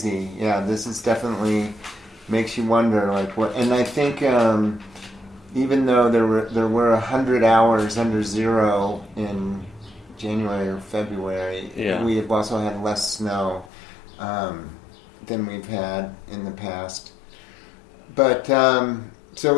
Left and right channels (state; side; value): drops out; right; at 13.7 s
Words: Yeah, this is definitely makes you wonder what. And I think even though there were 100 hours under zero in January or February. Yeah. We have also had less snow than we've had in the past. But so